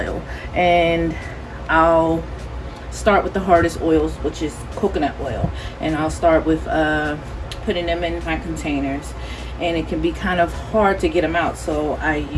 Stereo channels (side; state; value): both; identical; correlation 1.00